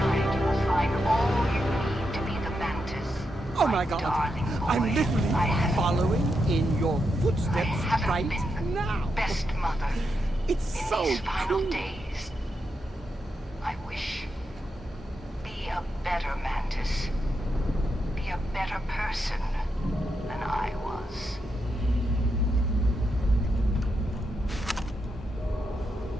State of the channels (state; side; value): normal; both; correlation 0.84